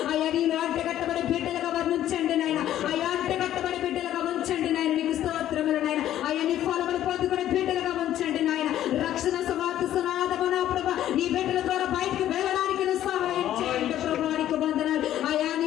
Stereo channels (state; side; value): quieter; right; 12.2 dB